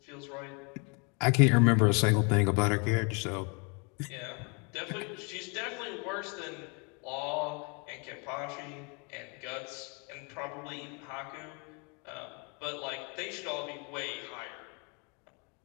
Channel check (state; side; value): quieter; right; 33.4 dB